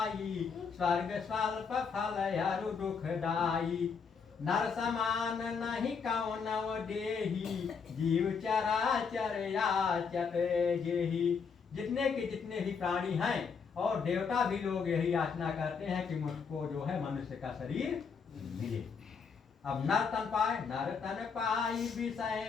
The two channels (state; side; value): quieter; right; 5.8 dB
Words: स्वर्ग स्वल्प फल अरु दुखदाई, नर समान नहीं कौनव देही, जीव चराचर याचत जेहि। जितने के जितने भी प्राणी हैं और देवता भी लोग यही याचना करते हैं कि मुझको जो है मनुष्य का शरीर मिले। अब नर तन पाए, नर तन पाई विषय